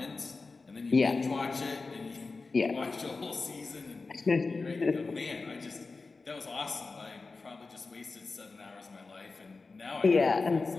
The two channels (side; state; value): right; quieter; 4.0 dB